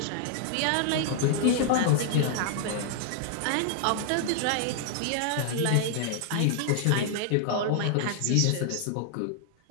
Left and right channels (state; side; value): different; both; correlation 0.00